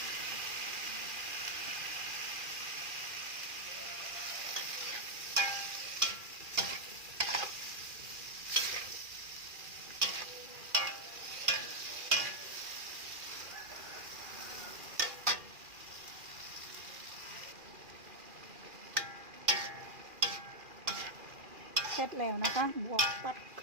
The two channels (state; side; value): late; left; 2.4 ms